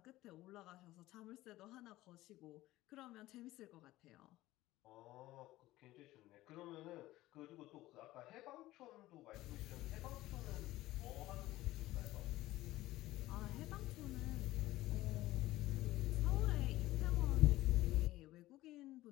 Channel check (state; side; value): quieter; right; 16.8 dB